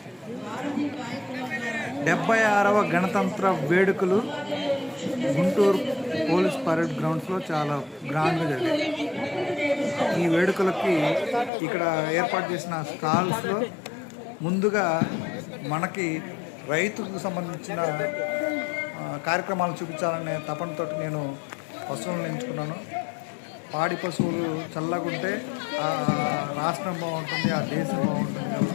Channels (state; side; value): drops out; right; at 11.5 s